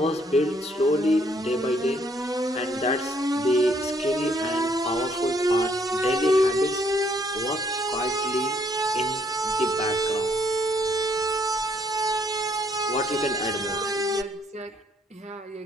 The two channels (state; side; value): normal; both; correlation 0.68